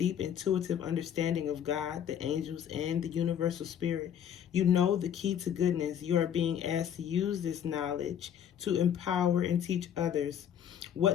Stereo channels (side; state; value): right; quieter; 9.2 dB